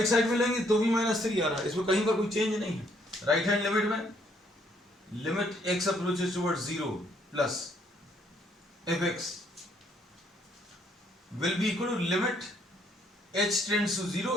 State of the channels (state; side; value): normal; both; correlation 0.69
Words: साइड में लेंगे तो भी -3 आ रहा है, इसमें कहीं पर कोई चेंज नहीं है। राइट हैंड लिमिट में limit x approaches towards zero plus fx will be equal to limit h tends to zero